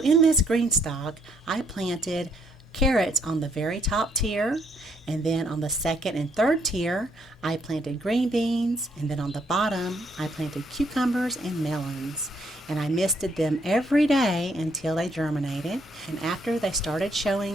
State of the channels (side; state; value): both; normal; correlation 0.71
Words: in this GreenStalk, I planted carrots on the very top tier, and then on the second and third tier I planted green beans, and then on the bottom I planted cucumbers and melons, and I misted them every day until they germinated. And after they started